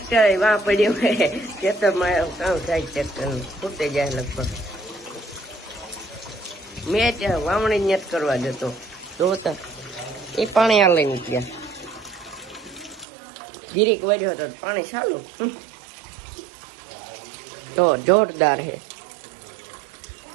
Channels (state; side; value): drops out; left; at 13.1 s